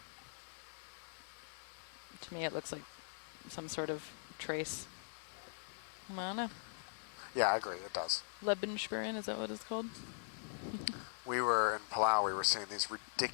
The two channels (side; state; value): right; silent; digital silence